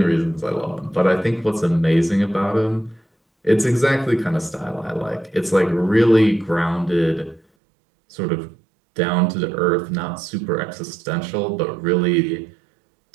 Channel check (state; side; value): drops out; left; at 7.4 s